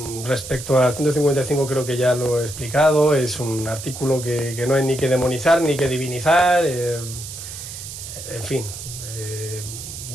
respecto al 155 creo que ya lo he explicado. Es un artículo que no hay ni que demonizar ni que divinizar. En fin,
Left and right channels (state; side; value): noise; right; hiss, 10 dB below the sound